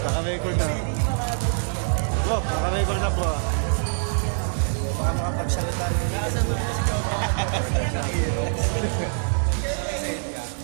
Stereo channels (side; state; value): left; silent; 56 dB below the other